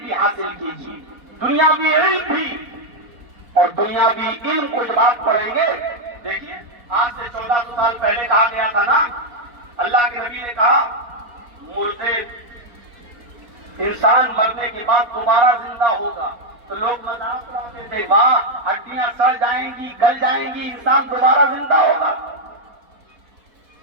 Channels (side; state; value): left; late; 4.2 ms